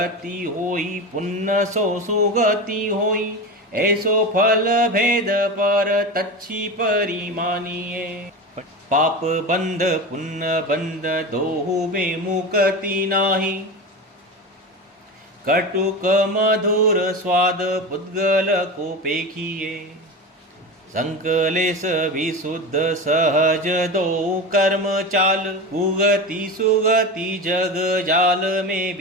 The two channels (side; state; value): both; normal; correlation 0.25